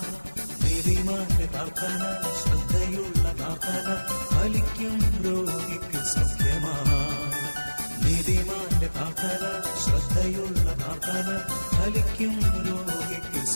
നീതിമാന്റെ പ്രാർത്ഥന, ശ്രദ്ധയുള്ള പ്രാർത്ഥന ഫലിക്കും രോഗിക്ക് സൗഖ്യമായി. നീതിമാന്റെ പ്രാർത്ഥന, ശ്രദ്ധയുള്ള പ്രാർത്ഥന ഫലിക്കും രോഗിക്ക്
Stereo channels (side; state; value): both; inverted; correlation -1.00